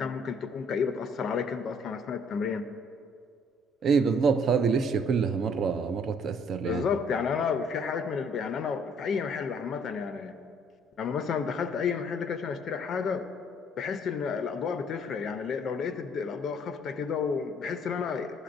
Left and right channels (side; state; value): both; normal; correlation 0.61